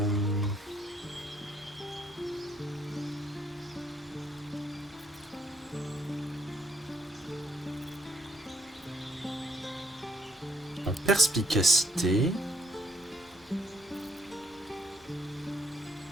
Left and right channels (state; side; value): normal; both; correlation 0.69